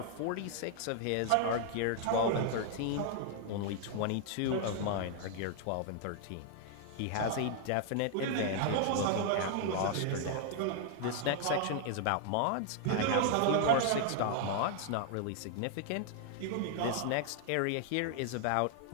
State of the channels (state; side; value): different; both; correlation 0.00